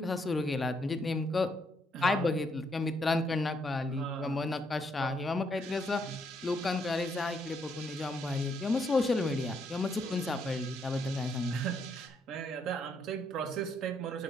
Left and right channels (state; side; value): normal; both; correlation 0.74